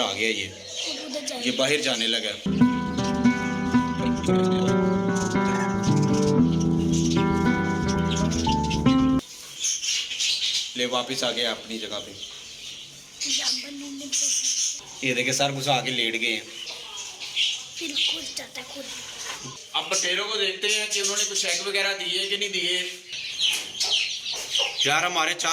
आ गया। ये बाहर जाने लगा। ले वापस आ गया अपनी जगह पे। ये देखिए सर घुसा के लेट गए हैं। अब बटेरों को देखते हैं कि उन्होंने कुछ एग वगैरह दिए कि नहीं दिए। यार हमारे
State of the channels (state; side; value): identical; both; correlation 1.00